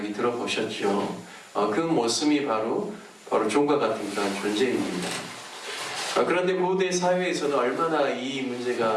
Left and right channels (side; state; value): both; identical; correlation 1.00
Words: 들어보셨죠? 그 머슴이 바로 종과 같은 그런 존재입니다. 그런데 고대 사회에서는 얼마나 이